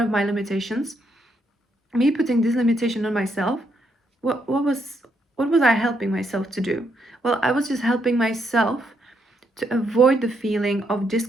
my limitations, me putting this limitation on myself, what was I helping myself to do? Well, I was just helping myself to avoid the feeling of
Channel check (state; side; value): normal; both; correlation 0.76